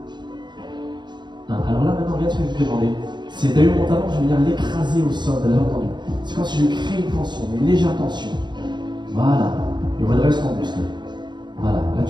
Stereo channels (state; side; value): late; left; 0.22 ms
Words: 1. Alors là, maintenant, regarde ce que je vais te demander. C'est d'ailleurs mon talon, je vais venir l'écraser au sol, vous avez entendu. C'est comme si je crée une tension, une légère tension. Voilà. Et redresse ton buste. Voilà. Là,